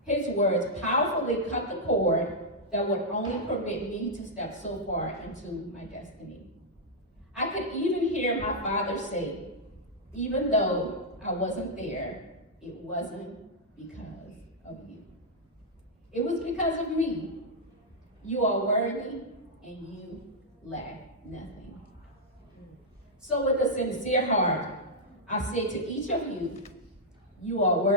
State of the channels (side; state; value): both; normal; correlation -0.06